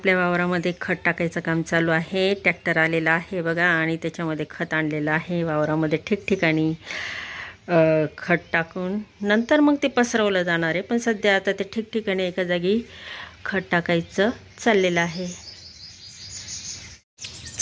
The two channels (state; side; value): identical; both; correlation 1.00